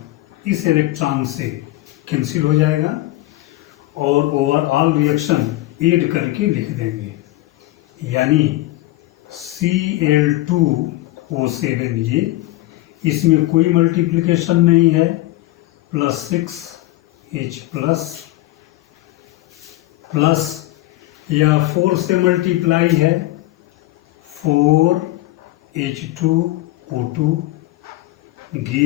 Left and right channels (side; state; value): right; quieter; 17.3 dB